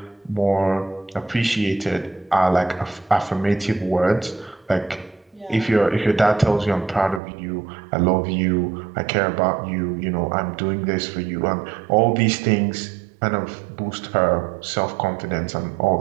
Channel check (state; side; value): drops out; left; at 7.2 s